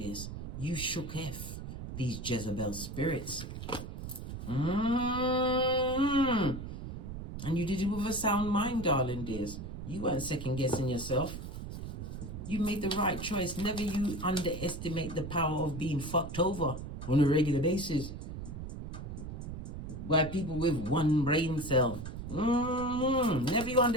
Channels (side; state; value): right; noise; rumble, 8 dB below the sound